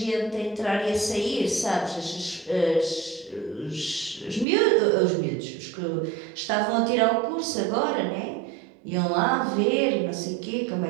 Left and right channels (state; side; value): drops out; left; at 4.5 s